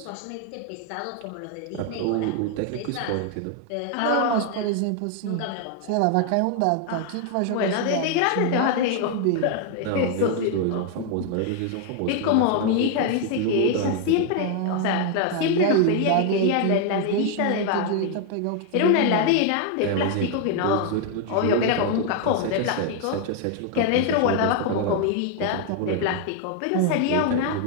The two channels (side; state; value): both; different; correlation 0.01